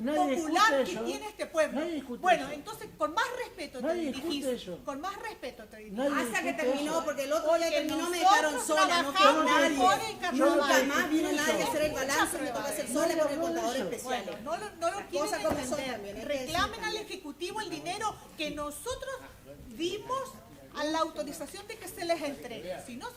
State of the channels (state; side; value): identical; both; correlation 1.00